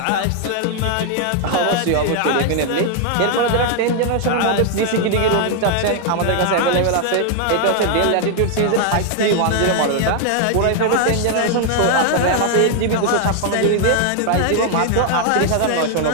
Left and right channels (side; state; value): both; different; correlation 0.00